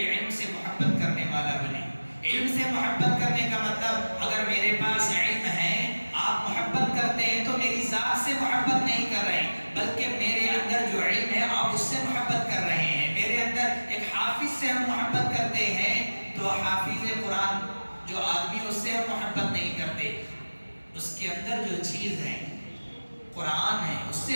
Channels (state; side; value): inverted; both; correlation -1.00